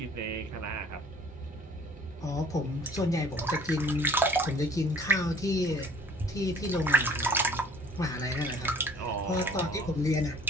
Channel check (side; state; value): both; normal; correlation 0.51